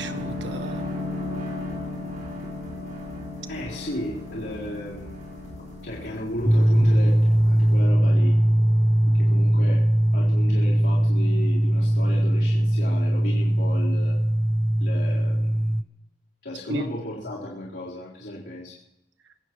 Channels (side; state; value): both; normal; correlation 0.96